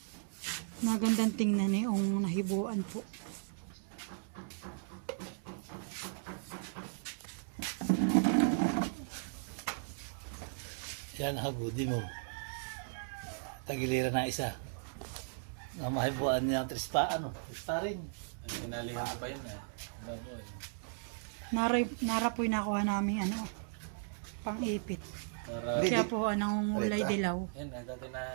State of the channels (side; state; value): left; silent; digital silence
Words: Magandang tingnan eh, yung nahibuan po. Yan, hagudi mo. Tagiliran na isa. Ang mahibuan niya ang trista, trista rin. Ay, pinalihan pa yun eh. Nara po yung nakuha namin pang-ipit. Para, Kaya po anong ulay dilaw. yan eh, dati na